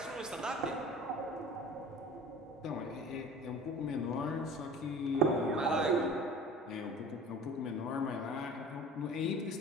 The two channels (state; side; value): normal; both; correlation 0.41